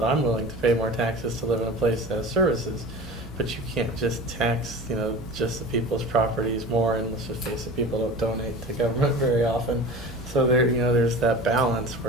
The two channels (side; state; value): both; normal; correlation 0.34